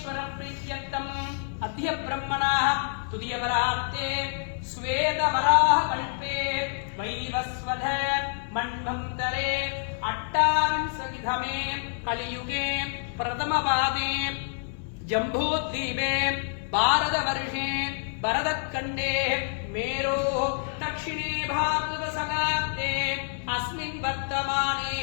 प्रीत्यर्थम अद्य ब्रह्मणः तुदियवरात्ते श्वेतवराह कल्पे वैवस्वध मन्वन्तरे अट्टाविंशतितमे कलियुगे प्रथमपादे जम्बूद्वीपे भारतवर्षे भरतखण्डे मेरोः दक्षिणे भाद्रपदशकाब्दे अस्मिन् वर्तमाने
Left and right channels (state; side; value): silent; right; 60 dB below the other